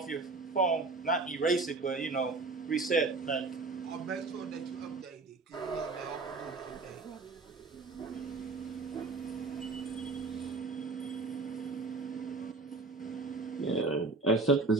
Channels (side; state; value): left; quieter; 3.7 dB